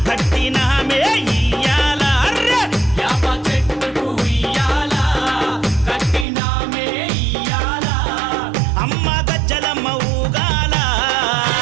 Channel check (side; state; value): left; drops out; at 6.2 s